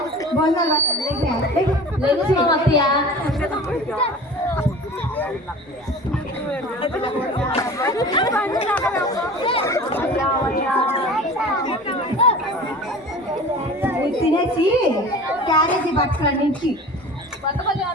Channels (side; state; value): both; normal; correlation 0.39